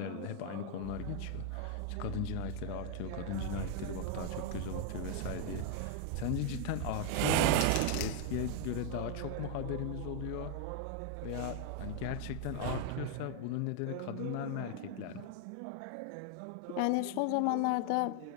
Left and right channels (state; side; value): different; both; correlation 0.00